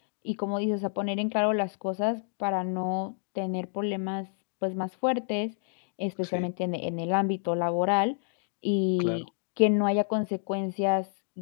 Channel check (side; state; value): right; silent; digital silence